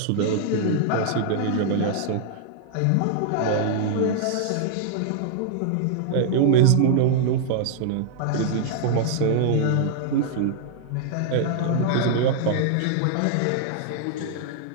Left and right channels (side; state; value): both; different; correlation -0.01